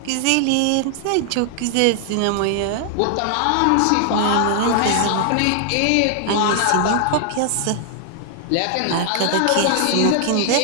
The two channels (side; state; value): both; different; correlation 0.00